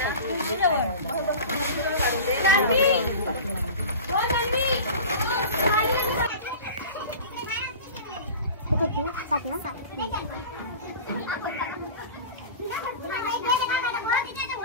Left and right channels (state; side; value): inverted; both; correlation -0.35